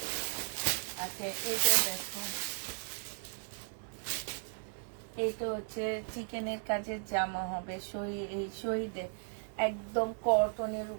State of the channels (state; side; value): silent; left; digital silence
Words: আচ্ছা, এটা দেখো, এটা হচ্ছে চিকেনের কাজের জামা হবে, শহীদের একদম কটনের